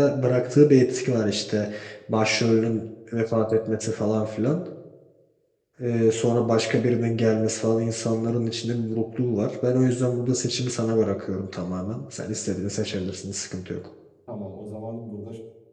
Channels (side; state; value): both; identical; correlation 1.00